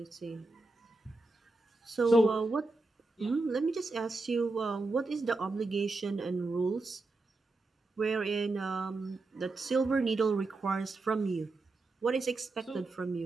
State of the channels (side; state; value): left; quieter; 3.3 dB